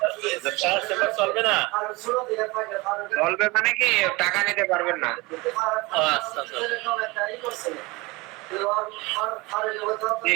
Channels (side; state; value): left; quieter; 23.8 dB